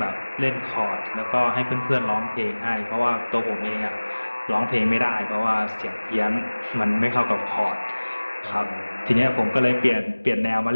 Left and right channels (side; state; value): both; inverted; correlation -1.00